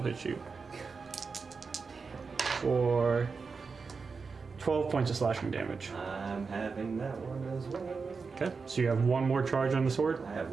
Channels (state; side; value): quieter; left; 4.9 dB